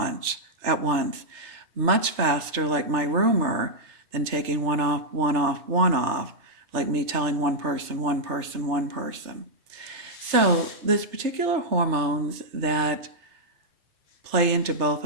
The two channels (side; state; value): left; late; 3.3 ms